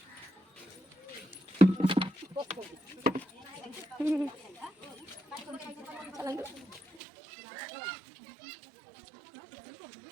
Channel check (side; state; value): left; drops out; at 7.0 s